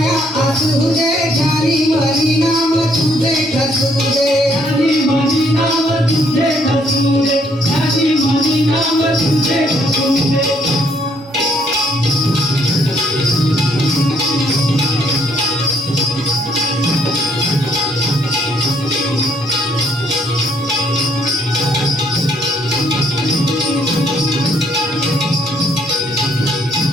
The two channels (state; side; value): normal; both; correlation 0.67